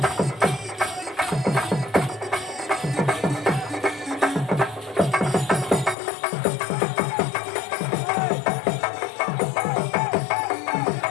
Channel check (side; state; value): right; drops out; at 6.0 s